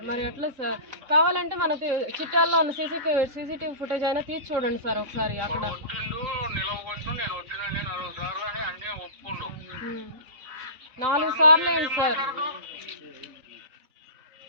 మరి ఎట్లా సార్? కావాలంటే మనకి చిట్టాల్లో ఉన్న సీసీటీవీ ఫుటేజ్ అయినా తీసి చూడండి సార్ ఒకసారి. అక్కడ 4 సార్లు ఏంటి సార్?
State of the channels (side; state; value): left; late; 3.6 ms